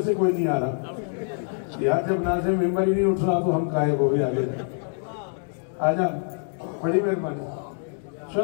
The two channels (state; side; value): silent; right; 62 dB below the other